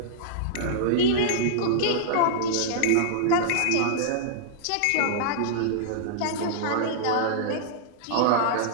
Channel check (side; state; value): both; different; correlation -0.02